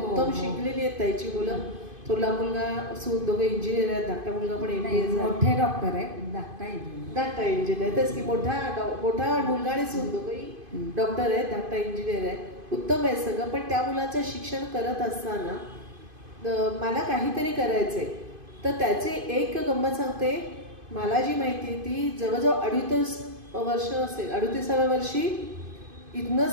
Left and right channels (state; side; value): late; left; 2.5 ms